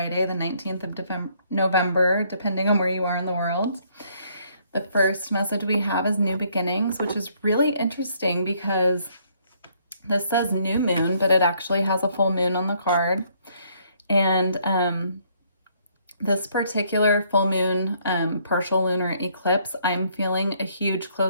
the 19th of November, depending on where you are in the world. The first message we have is new beginnings, which is really interesting because this says new moon, but it actually has a full moon on the card. And this particular full moon partial lunar eclipse, I'm feeling a huge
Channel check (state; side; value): inverted; both; correlation -0.67